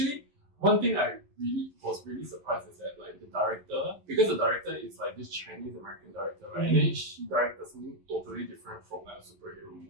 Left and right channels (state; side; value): late; left; 11 ms